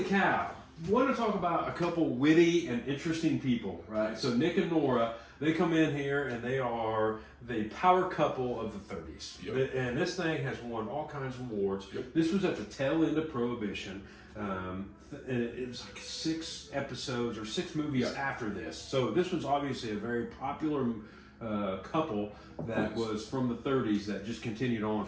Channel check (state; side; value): identical; both; correlation 1.00